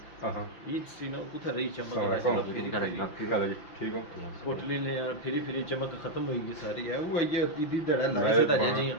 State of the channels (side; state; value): right; late; 5.7 ms